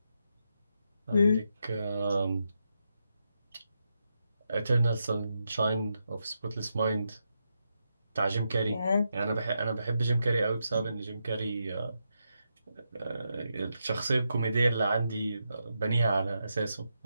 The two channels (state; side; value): inverted; both; correlation -0.84